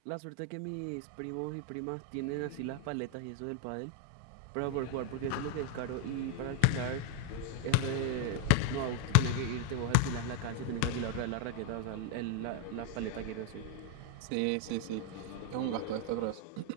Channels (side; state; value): both; different; correlation 0.00